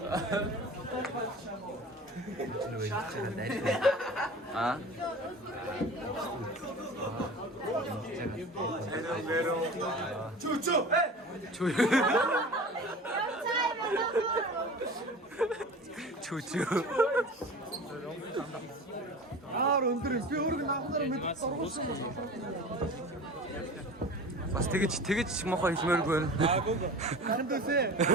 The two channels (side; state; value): both; normal; correlation 0.37